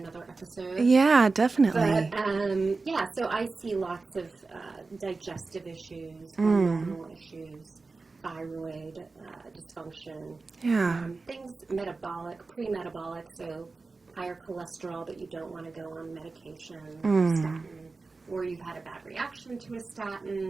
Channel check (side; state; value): left; quieter; 3.9 dB